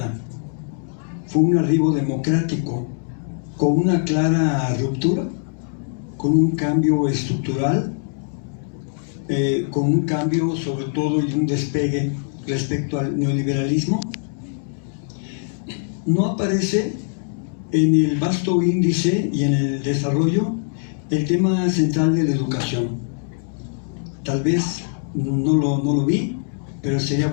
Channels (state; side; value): silent; right; 64 dB below the other